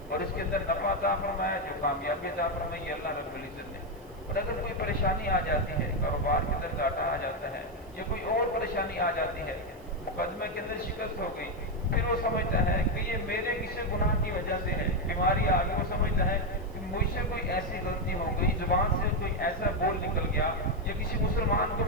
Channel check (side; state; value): right; noise; hiss, 28 dB below the sound